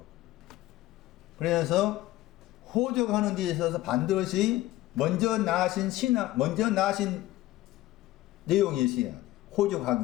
그래서 호적하는 데 있어서 반드시 먼저 나신 내용이 있어야 돼.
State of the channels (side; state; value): right; quieter; 16.2 dB